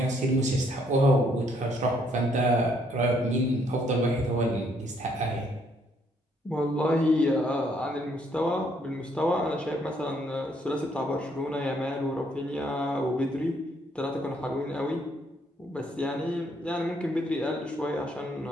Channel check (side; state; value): both; normal; correlation 0.69